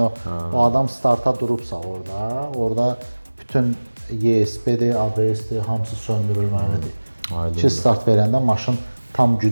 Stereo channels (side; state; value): both; inverted; correlation -1.00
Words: o adam starta durubsa orada bütün ESP-dir, ABS-dir, hamısı söndürülməlidir. Ki start verəndə maşın tam